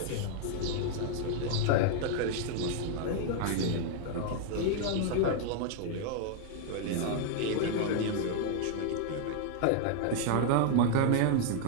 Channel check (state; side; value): different; both; correlation 0.00